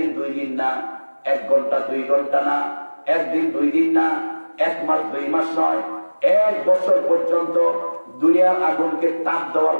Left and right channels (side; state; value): both; inverted; correlation -1.00